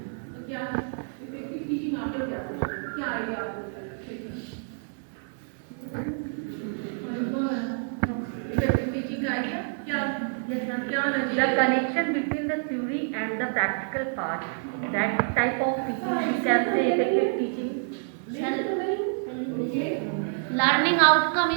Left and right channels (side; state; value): left; silent; digital silence